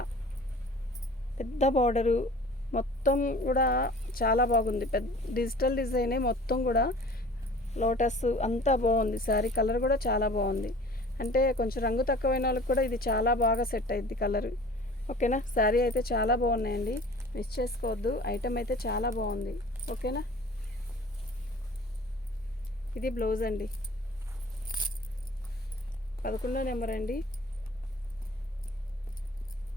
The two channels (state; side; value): normal; both; correlation 0.45